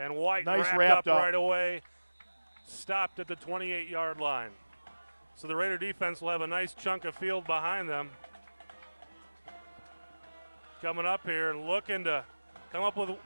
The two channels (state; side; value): inverted; both; correlation -1.00